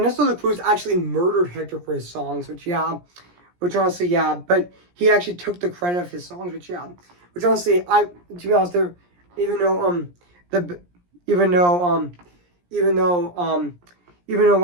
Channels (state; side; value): late; left; 17 ms